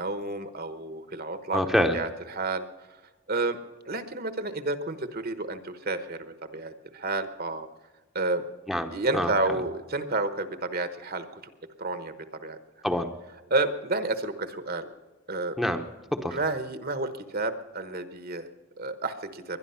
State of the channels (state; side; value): normal; both; correlation 0.09